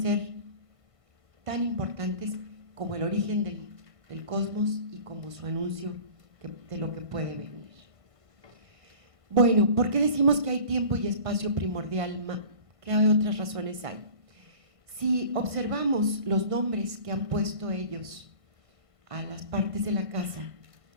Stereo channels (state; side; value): late; left; 1.5 ms